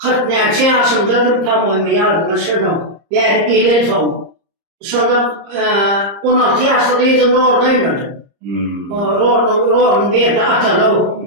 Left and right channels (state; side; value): late; left; 30 ms